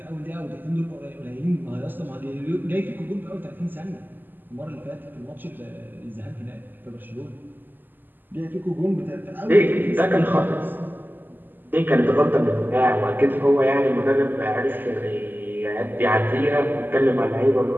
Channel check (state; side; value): late; left; 0.089 ms